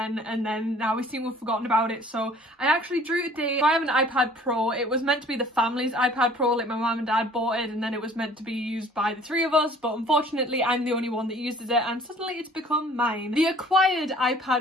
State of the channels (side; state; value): both; normal; correlation 0.52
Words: and then now we seem to have forgotten about it. So I actually drew today. So I have an iPad Pro. It was meant to be the family's iPad Pro, like my mum and dad bought it and then it was meant to be used by the three of us, but unfortunately I'm the only one that uses it and suddenly it's become mine. The acquired